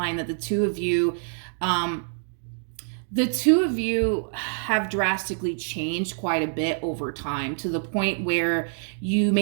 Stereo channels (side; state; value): left; silent; digital silence